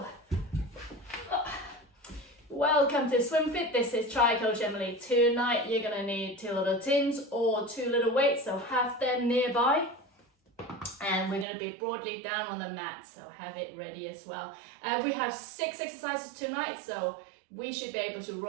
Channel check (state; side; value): drops out; left; at 11.5 s